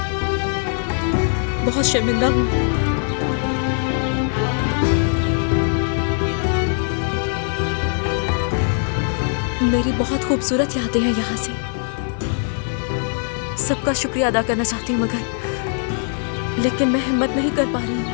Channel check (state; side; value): silent; right; 60 dB below the other